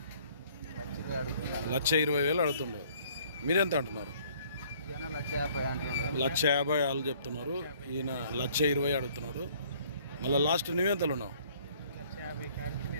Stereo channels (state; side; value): inverted; both; correlation -0.59